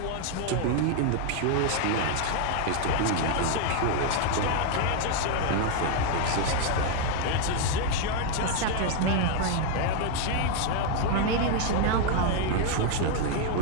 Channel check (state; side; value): different; both; correlation 0.00